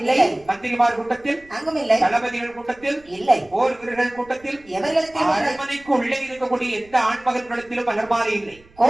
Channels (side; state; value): right; noise; rumble, 27 dB below the sound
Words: இல்லை. மந்திரிமார் கூட்டத்தில் அங்கும் இல்லை. தளபதிகள் கூட்டத்தில் இல்லை. போர் வீரர்கள் கூட்டத்தில் எவர்களுக்கு அரண்மனைக்கு உள்ளே இருக்கக்கூடிய எந்த ஆண்மகன் கூட்டத்திலும் மலர் மாலை இல்லை.